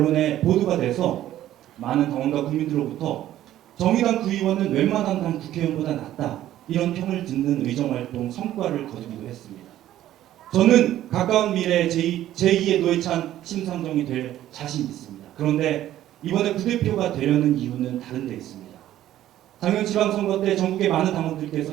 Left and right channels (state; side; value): quieter; left; 13.0 dB